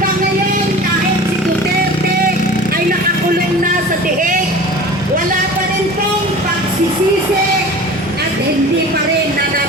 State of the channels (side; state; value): both; normal; correlation 0.39